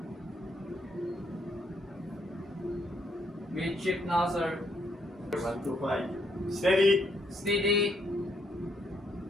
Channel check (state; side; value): normal; both; correlation 0.73